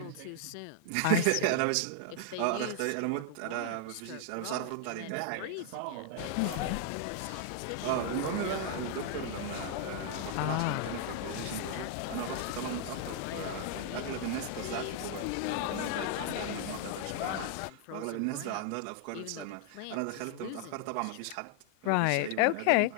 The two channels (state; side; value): different; both; correlation -0.01